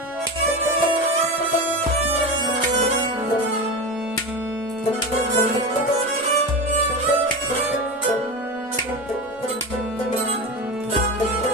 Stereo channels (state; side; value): normal; both; correlation 0.23